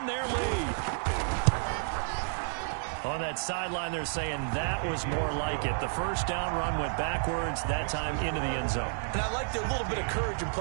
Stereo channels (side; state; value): left; silent; digital silence